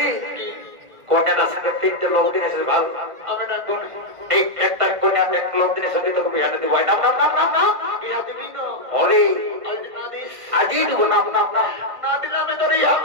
কন্যাটার সঙ্গে তিনটে লোক দিন এসেছে ভালো এই একটা কন্যা এক লোক দিনের সঙ্গে তোকে বিহাটা দিব নাম নাম নাম নাম নাম অরে আজই দিব নাম নাম নাম না দিলে আমি তোর ইয়া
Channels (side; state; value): left; late; 1.5 ms